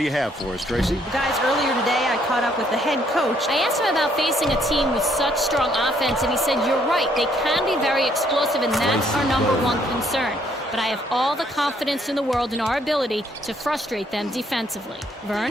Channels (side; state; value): both; normal; correlation 0.68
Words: you have for us, Tracy? Guys, earlier today I caught up with the head coach. I asked him about facing a team with such strong offense, and he said, you're right, they can be very explosive, and that's our number one concern. But I have all the confidence in the world in our ability to frustrate them defensively.